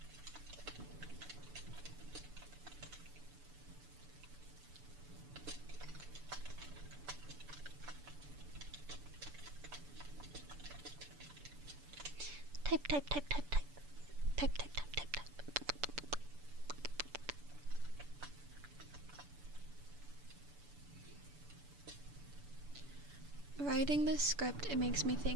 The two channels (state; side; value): late; left; 6.9 ms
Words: Type. Writing this script, it makes me